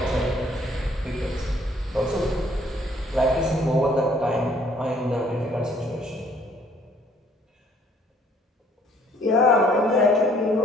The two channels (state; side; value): normal; both; correlation 0.61